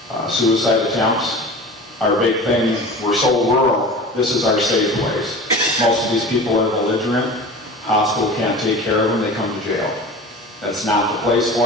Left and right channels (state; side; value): normal; both; correlation 0.36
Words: Suicide attempts. Our big thing, we're so rural, this is our safe place. Most of these people are belligerent. Hospital can't take care of them, they come to jail. That's not the place